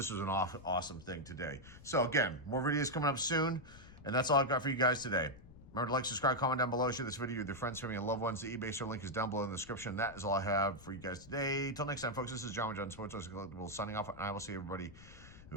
awesome thing today. So again, more videos coming up soon, and that's all I've got for you guys today. Remember to like, subscribe, comment down below, share this video with your friends, family, and loved ones. The eBay store link is down below in the description. That is all I have for you guys today. Till next time, folks, this is John with John Sports Collectibles signing off, and I will see everybody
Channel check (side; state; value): left; noise; rumble, 19 dB below the sound